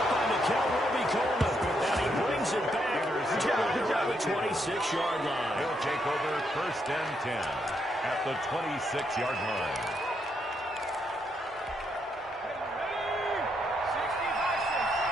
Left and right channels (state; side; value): normal; both; correlation 0.77